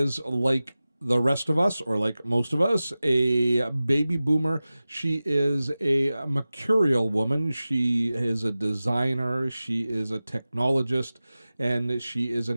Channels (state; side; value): inverted; both; correlation -0.96